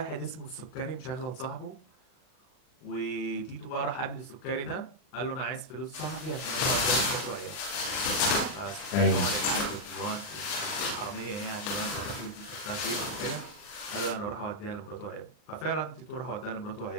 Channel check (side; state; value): right; late; 39 ms